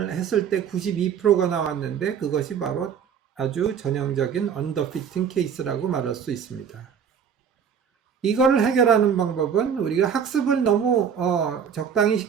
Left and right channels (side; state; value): left; quieter; 7.5 dB